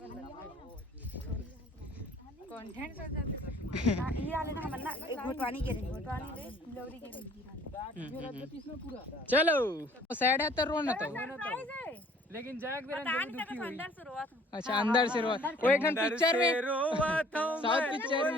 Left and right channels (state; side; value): normal; both; correlation 0.55